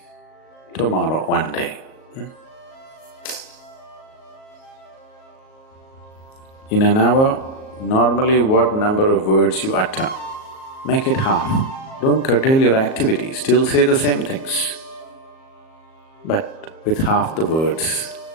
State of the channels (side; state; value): right; late; 38 ms